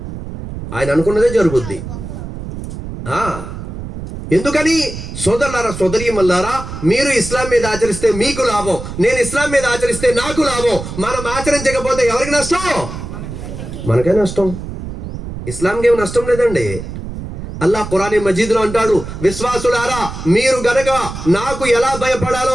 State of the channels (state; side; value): noise; right; rumble, 9 dB below the sound